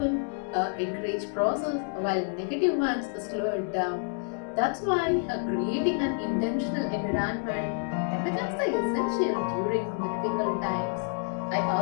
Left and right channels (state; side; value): silent; right; 57 dB below the other